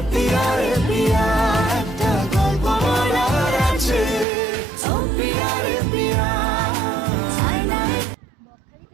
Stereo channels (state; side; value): drops out; left; at 4.2 s